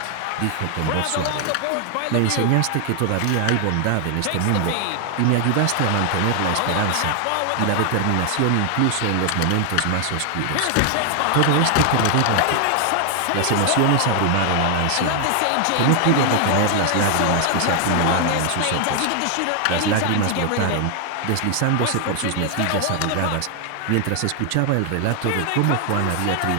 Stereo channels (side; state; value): both; different; correlation 0.00